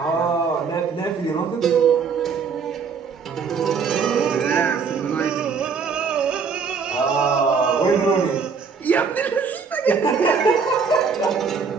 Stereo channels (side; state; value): left; quieter; 5.6 dB